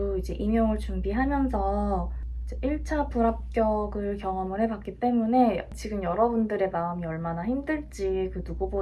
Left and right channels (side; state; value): both; identical; correlation 1.00